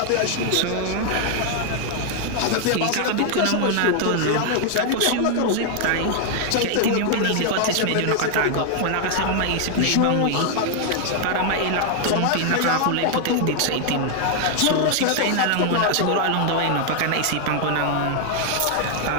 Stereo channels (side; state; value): both; different; correlation 0.00